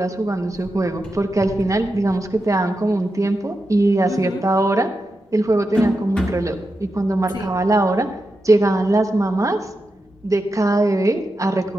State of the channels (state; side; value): normal; both; correlation 0.89